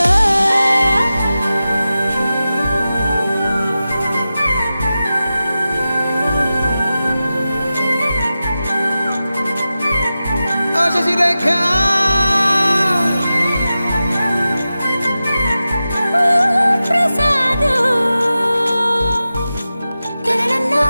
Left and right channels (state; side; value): inverted; both; correlation -0.93